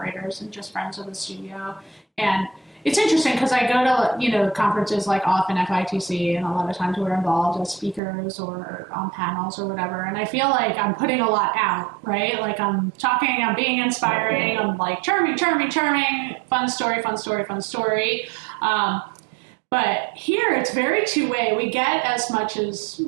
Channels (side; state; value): left; drops out; at 8.0 s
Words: and just friends of the studio. And it's interesting because I go to, conferences like often FITC, and a lot of times we're involved as speakers or on panels or whatever. And I feel like I'm putting a lot out, right? Like I'm talking, I'm being inspiring, I'm like charming, fun story. But here it's very two-way. We get as much as